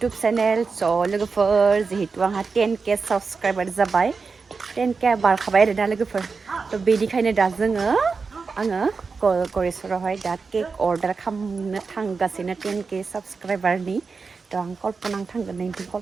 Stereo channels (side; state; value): left; quieter; 4.8 dB